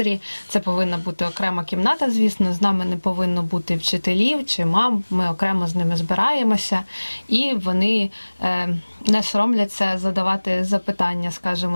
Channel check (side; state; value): both; inverted; correlation -1.00